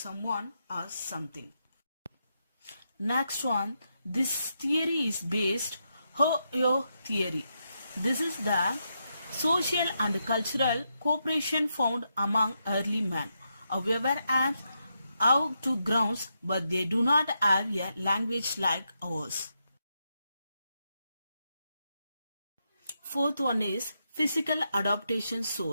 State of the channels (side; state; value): both; inverted; correlation -0.83